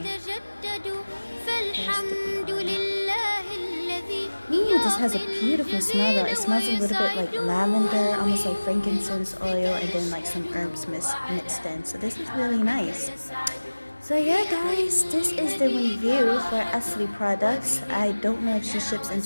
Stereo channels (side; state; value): both; inverted; correlation -1.00